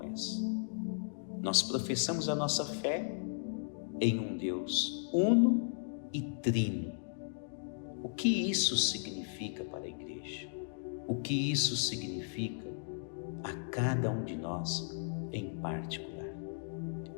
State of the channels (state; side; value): silent; right; digital silence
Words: essa? Nós professamos a nossa fé em um Deus uno e trino. O que isso significa para a Igreja? O que isso significa a cada um de nós em particular?